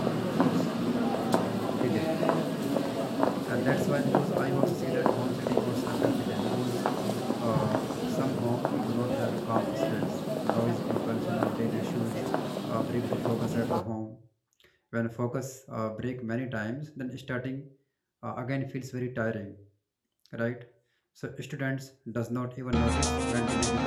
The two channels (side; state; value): both; identical; correlation 1.00